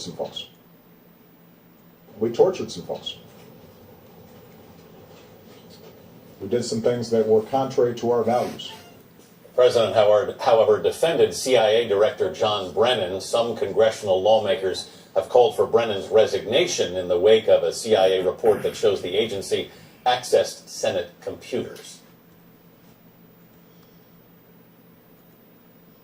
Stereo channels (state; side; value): identical; both; correlation 1.00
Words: some folks. We tortured some folks. We did some things that were contrary to our values. The president, however, defended CIA Director John Brennan. Some congressional lawmakers have called for Brennan's resignation in the wake of a CIA report that shows the agency accessed Senate computers.